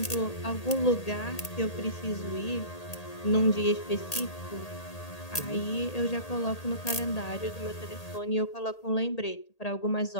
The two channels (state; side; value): late; right; 1.8 ms